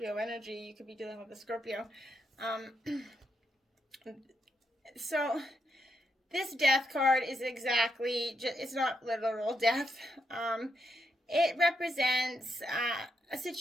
energy. You could be dealing with a Scorpio. So this death card is exactly, it's not literal death. It represents a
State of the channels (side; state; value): both; normal; correlation 0.80